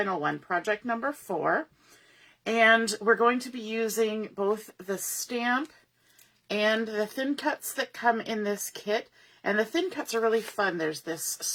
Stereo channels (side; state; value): both; identical; correlation 1.00